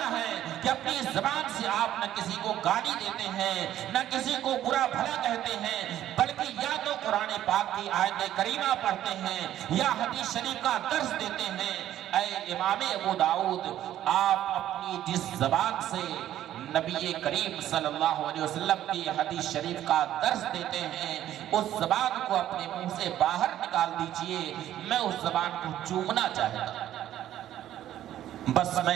ہے کہ اپنی زبان سے آپ نہ کسی کو گالی دیتے ہیں، نہ کسی کو برا بھلا کہتے ہیں، بلکہ یا تو قرآن پاک کی آیت کریمہ پڑھتے ہیں یا حدیث شریف کا درس دیتے ہیں۔ اے امام ابو داؤد، آپ اپنی جس زبان سے نبی کریم صلی اللہ علیہ وسلم کی حدیث شریف کا درس دیتے ہیں، اس زبان کو اپنے منہ سے باہر نکال دیجئے، میں اس زبان کو چومنا چاہتا ہوں، بس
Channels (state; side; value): quieter; left; 12.2 dB